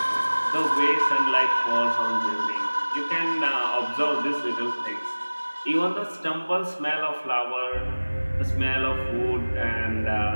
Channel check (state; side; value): inverted; both; correlation -1.00